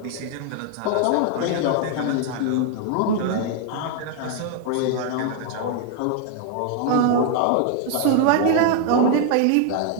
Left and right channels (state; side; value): different; both; correlation 0.00